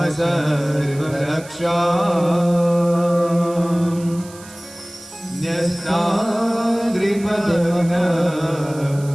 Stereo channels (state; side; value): noise; right; hiss, 19 dB below the sound